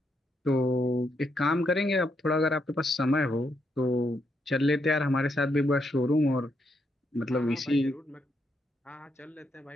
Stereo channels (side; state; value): both; normal; correlation 0.79